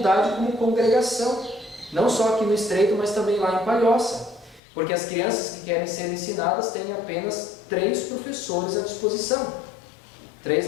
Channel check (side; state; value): right; drops out; at 4.6 s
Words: como congregação, não só aqui no Estreito, mas também lá em Palhoça, porque as crianças que querem ser ensinadas têm apenas 3 professores à disposição, 3